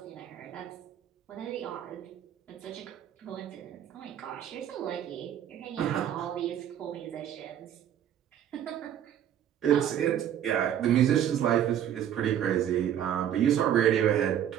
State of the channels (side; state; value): left; quieter; 10.3 dB